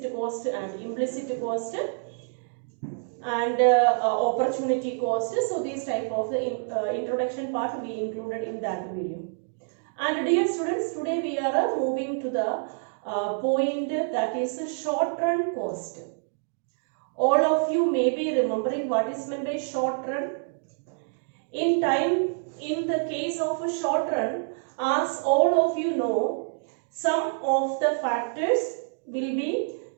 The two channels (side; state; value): left; silent; digital silence